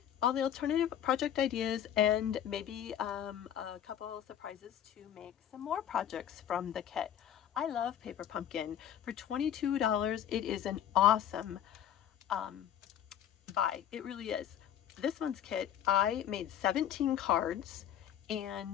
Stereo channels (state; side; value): quieter; right; 10.1 dB